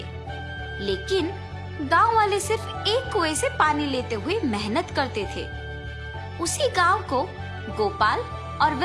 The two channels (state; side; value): identical; both; correlation 1.00